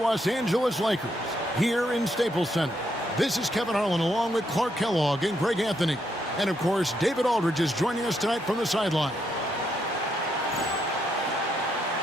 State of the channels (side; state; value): both; normal; correlation 0.77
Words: Angeles Lakers here in Staples Center. This is Kevin Harlan along with Clark Kellogg and Greg Anthony. And, of course, David Aldridge is joining us tonight from the sideline.